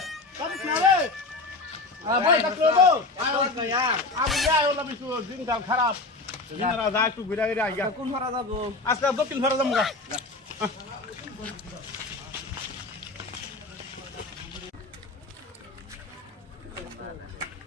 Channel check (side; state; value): right; quieter; 3.3 dB